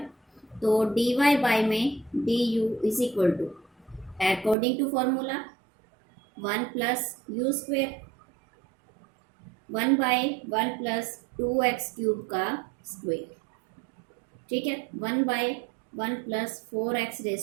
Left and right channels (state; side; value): drops out; left; at 4.5 s